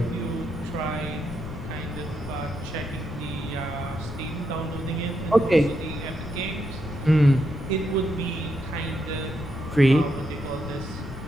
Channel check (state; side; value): noise; left; rumble, 10 dB below the sound